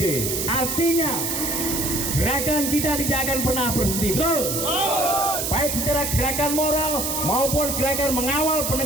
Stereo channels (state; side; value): noise; right; hiss, 2 dB below the sound